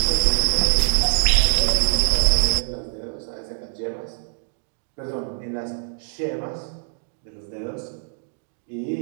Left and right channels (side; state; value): left; silent; digital silence